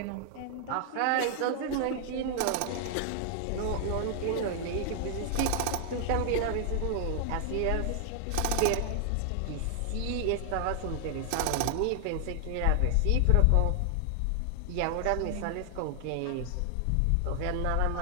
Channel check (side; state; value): both; different; correlation 0.00